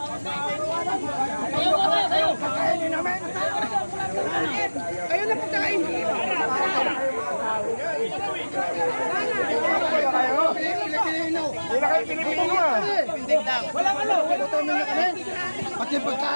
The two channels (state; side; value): inverted; both; correlation -1.00